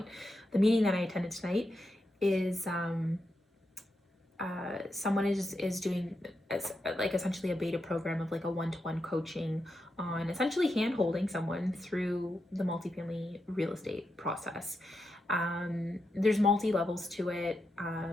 The meeting that I attended tonight is someone is doing like essentially a beta program of like a one-to-one coaching on essentially hand-holding someone through the multifamily real estate process. There's multi-levels to it.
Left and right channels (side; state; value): both; normal; correlation 0.86